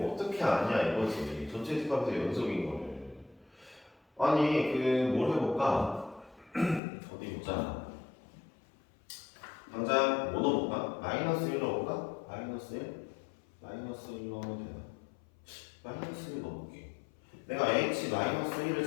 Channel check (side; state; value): right; drops out; at 6.8 s